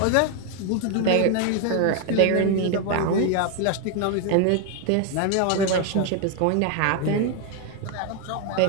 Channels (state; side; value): different; both; correlation 0.01